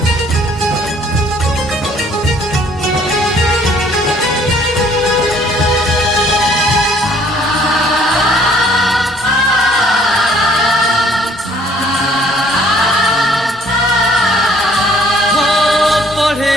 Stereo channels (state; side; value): normal; both; correlation 0.60